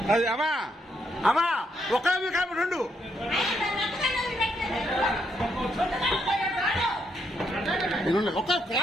అది అమ్మా అమ్మా ఒక్కదాని కాబట్టి రెండు ఒక్క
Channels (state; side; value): normal; both; correlation 0.77